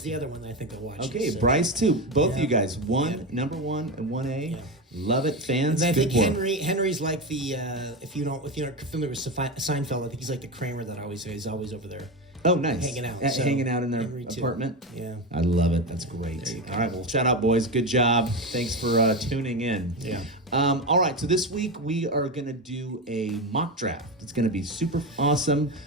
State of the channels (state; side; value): normal; both; correlation 0.18